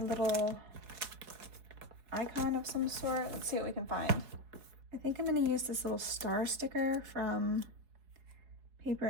icon of some sort. Let's see what we can find. I think I'm gonna use this little star sticker from Paper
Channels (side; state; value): left; late; 4.7 ms